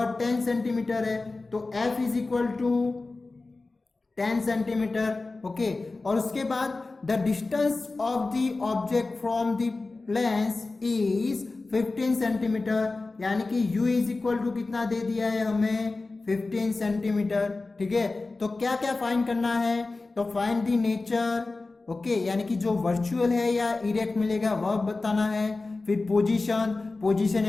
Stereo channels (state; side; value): quieter; right; 3.5 dB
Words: 10 सेंटीमीटर है। तो f is equal to 10 centimetre. Okay, और उसके बाद the distance of the object from the lens is 15 centimetre, यानी कि u इज इक्वल टू कितना दे दिया है हमें 15 सेंटीमीटर। ठीक है, तो क्या क्या फाइंड करना है, तो फाइंड द नेचर। ओके, यानी कि जो वर्चुअल है या इरेक्ट मिलेगा वह बताना है। फिर पोजीशन